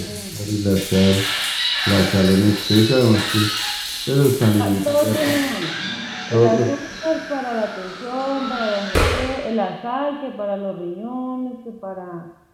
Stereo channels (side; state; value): both; identical; correlation 1.00